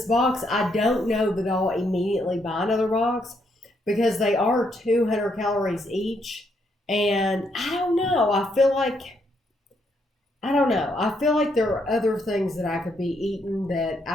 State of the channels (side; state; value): both; normal; correlation 0.75